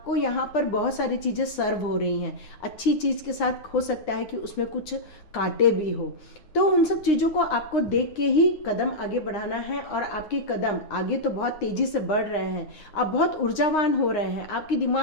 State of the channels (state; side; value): late; right; 9.7 ms